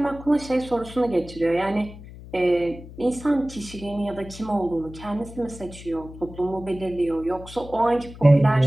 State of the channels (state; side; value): noise; left; hum, 16 dB below the sound